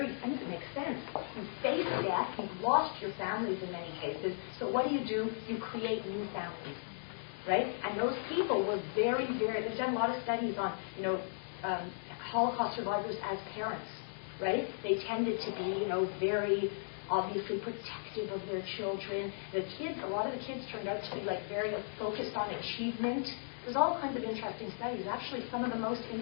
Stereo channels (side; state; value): right; silent; digital silence